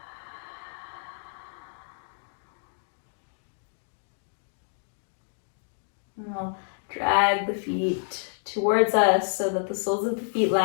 We'll drag the feet towards us so that the soles of the feet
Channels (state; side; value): silent; right; digital silence